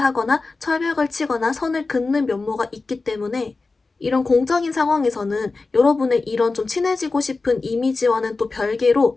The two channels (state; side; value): quieter; right; 3.8 dB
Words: 철벽을 치거나 선을 긋는 면모가 있기 때문에 이런 공적인 상황에서는 여러분의 이런 좀 친해지고 싶은 이미지와는 또